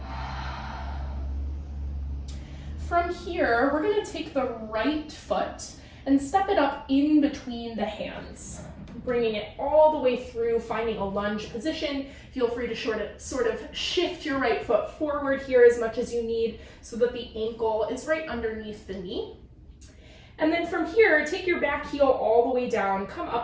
From here, we're going to take the right foot and step it up in between the hands, bringing it all the way through, finding a lunge position. Feel free to sort of shift your right foot forward here as much as you need so that the ankle is right underneath the knee. And then from here, take your back heel all the way down, come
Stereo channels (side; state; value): both; identical; correlation 1.00